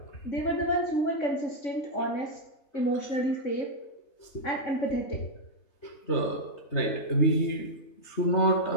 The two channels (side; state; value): right; late; 3.3 ms